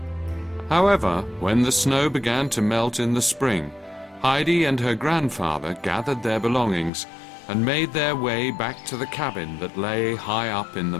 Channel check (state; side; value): drops out; right; at 6.9 s